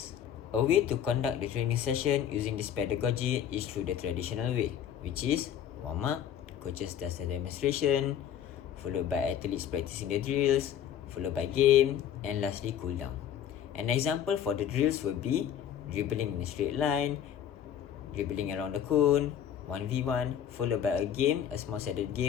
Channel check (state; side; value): quieter; right; 9.5 dB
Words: A way to conduct the training session using this pedagogy is through the traditional way, which is warm-up, coaches does the demonstration, followed by athletes practicing the drills, followed by game, and lastly cool down. An example for the drills will be dribbling in a straight line, dribbling around the cone, 1v1, followed by a game, a small-sided